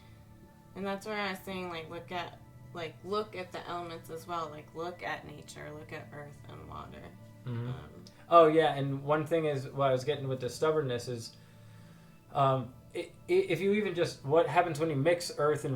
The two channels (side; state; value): both; identical; correlation 1.00